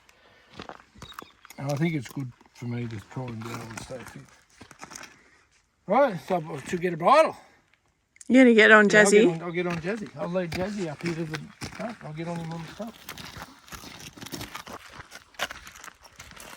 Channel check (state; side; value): identical; both; correlation 1.00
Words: And I think it's good for me to try and be able to stay fit. Right, so I should get a bridle. You're going to get on Jazzy? Yeah, I'll get on Jazzy. I'll lead Jazzy up here to the front. I'll get on him on the front.